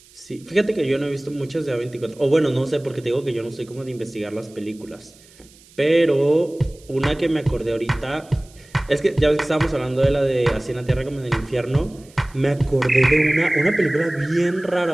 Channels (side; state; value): right; noise; hiss, 26 dB below the sound